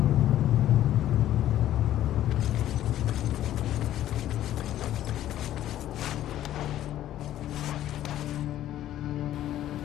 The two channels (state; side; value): quieter; right; 12.6 dB